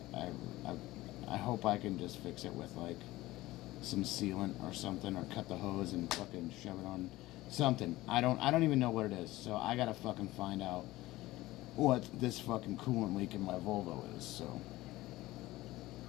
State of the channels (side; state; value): right; quieter; 17.9 dB